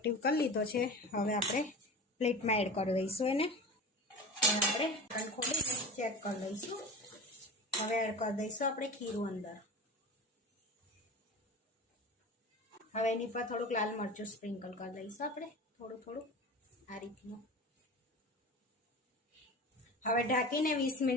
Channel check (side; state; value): both; normal; correlation 0.32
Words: કરી લીધો છે। હવે આપણે પ્લેટમાં એડ કરી દઈશું એને। આપણે ઢાંકણ ખોલીને ચેક કરી લઈશું। હવે એડ કરી દઈશું આપણે ખીરું અંદર। હવે એની પર થોડુંક લાલ મરચું સ્પ્રિંકલ કરી દઈશું આપણે થોડું આ રીતનું। હવે ઢાંકીને 20